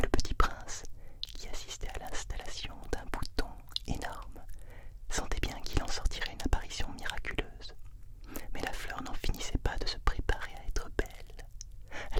Le Petit Prince, qui assistait à l'installation d'un bouton énorme, sentait bien qu'il en sortirait une apparition miraculeuse. Mais la fleur n'en finissait pas de se préparer à être belle.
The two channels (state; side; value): identical; both; correlation 1.00